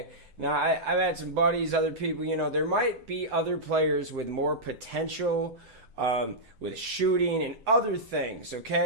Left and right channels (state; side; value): late; left; 7.8 ms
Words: Now, I've had some buddies, other people, there might be other players with more potential with shooting and other things,